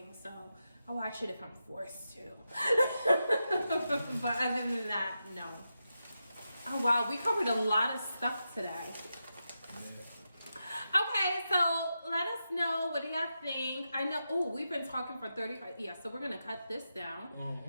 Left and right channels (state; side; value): inverted; both; correlation -0.88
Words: so I watch it if I'm forced to. But other than that, no. Oh, wow, we covered a lot of stuff today. Okay, so let us know, what do y'all think? I know, we've been talking for 35, so we're gonna cut this down.